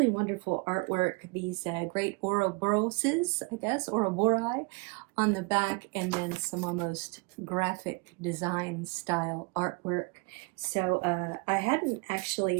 wonderful artwork, these great Ouroboroses, I guess, Ouroboros, on the back, and then some almost graphic design style artwork. So I'd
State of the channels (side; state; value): left; quieter; 29.9 dB